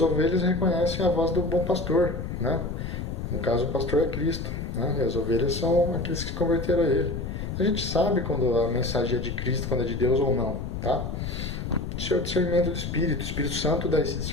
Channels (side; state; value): left; noise; rumble, 5 dB below the sound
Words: ovelhas reconhecem a voz do bom pastor, né? No caso, o pastor é Cristo, né? E as ovelhas são aqueles que se converteram a ele. A gente sabe quando a mensagem é de Cristo, quando é de Deus ou não, tá? Isso é o discernimento do Espírito. O Espírito Santo dá esse